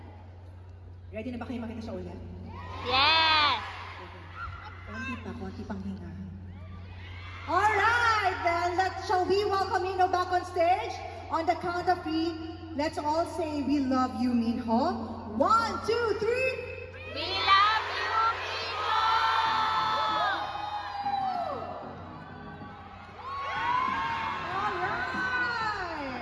Ready na ba kayo makita siya ulit? Yes! Konti pang hinga. Alright then, shall we welcome Minho back on stage? On the count of 3, let's all say we love you, Minho. 1, 2, 3. We love you, Minho! Alright!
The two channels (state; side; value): identical; both; correlation 1.00